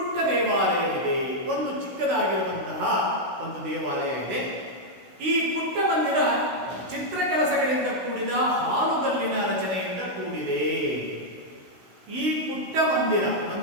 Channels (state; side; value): late; left; 16 ms